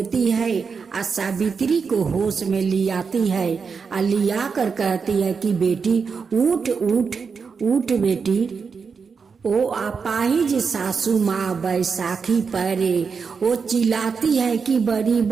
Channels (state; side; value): quieter; left; 5.6 dB